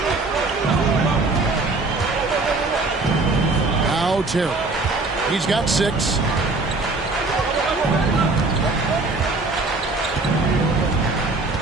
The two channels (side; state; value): left; quieter; 3.4 dB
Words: Now Terry. He's got 6.